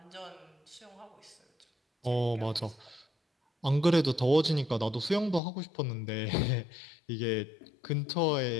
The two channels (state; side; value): drops out; right; at 5.4 s